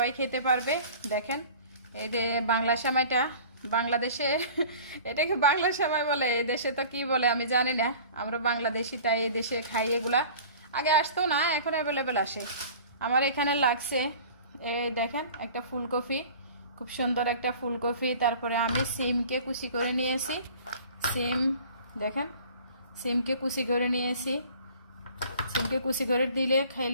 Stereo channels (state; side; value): inverted; both; correlation -0.44